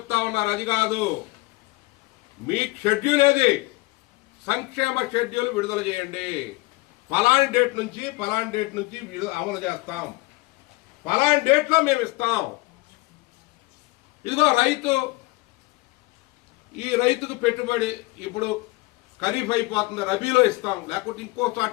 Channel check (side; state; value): right; quieter; 23.0 dB